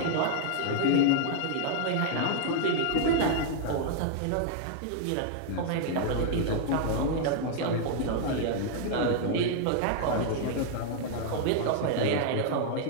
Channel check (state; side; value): different; both; correlation -0.01